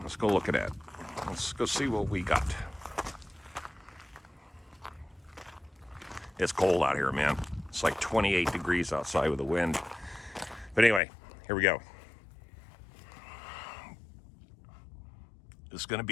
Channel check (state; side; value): drops out; right; at 11.0 s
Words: go look at it. Let's go see what we got. It's cold out here, man. It's like 28 degrees outside with the wind. But anyway, here we go. It's going to